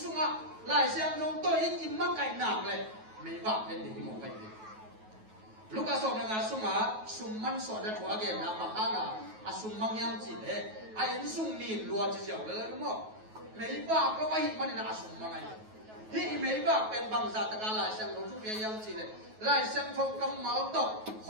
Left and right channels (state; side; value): late; left; 9.3 ms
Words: lại xem không tôi ít im mắc cạnh nàng này mấy vợ bên để một cái gì lúc à sổ là sung man sổ đã thua cái nào bằng hàng sung mang nhang chỉ đấy in sung nhìn luôn chỉ dẻo lên đúng không mấy vợ có ai mà nên sung mang ai thì mấy vợ bên bằng giả tất cả lại xem không chút cái nhang chỉ đấy lại xem không cầm máu tóc